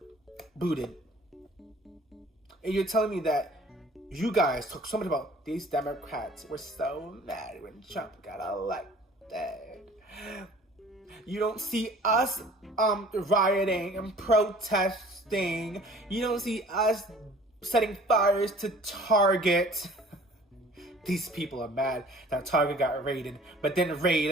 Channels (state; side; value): normal; both; correlation 0.50